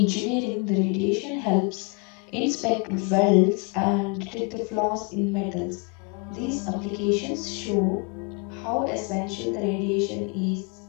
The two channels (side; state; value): right; quieter; 32.7 dB